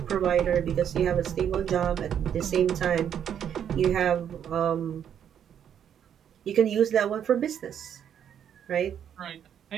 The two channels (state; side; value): quieter; left; 9.0 dB